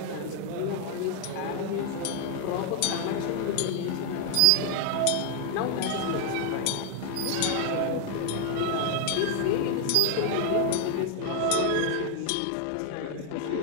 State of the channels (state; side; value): different; both; correlation 0.00